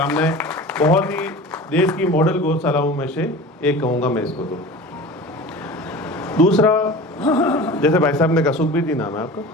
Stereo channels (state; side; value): normal; both; correlation 0.36